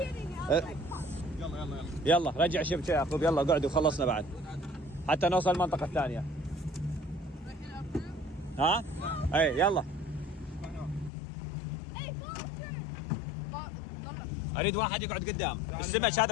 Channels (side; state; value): right; drops out; at 11.1 s